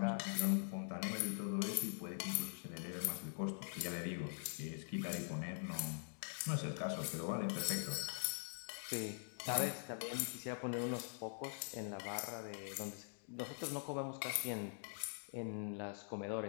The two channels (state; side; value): silent; right; digital silence